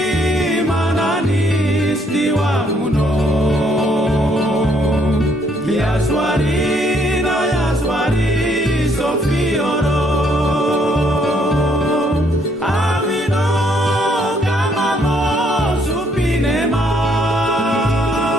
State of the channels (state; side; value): normal; both; correlation 0.68